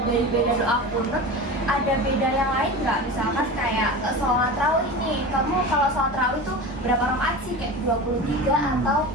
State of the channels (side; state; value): both; normal; correlation 0.30